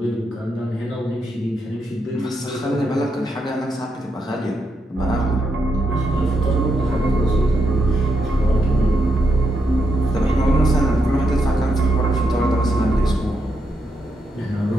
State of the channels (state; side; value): normal; both; correlation 0.82